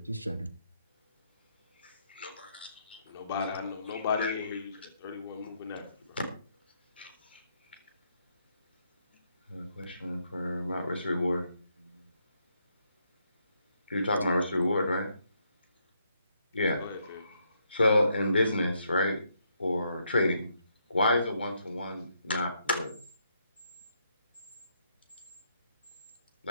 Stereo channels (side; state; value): both; inverted; correlation -0.76